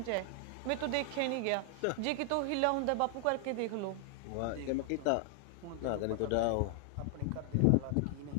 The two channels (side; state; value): both; different; correlation 0.00